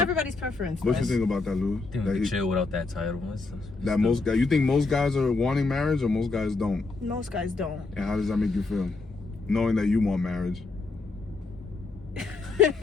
everybody's preference. What you Wes. think about that, Lou? I think That, we he- can chill without that title. that most guys, you think most guys are wanting marriage or most guys don't? Most guys don't. And how does that make you feel? Knowing that you want marriage.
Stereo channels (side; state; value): right; quieter; 3.7 dB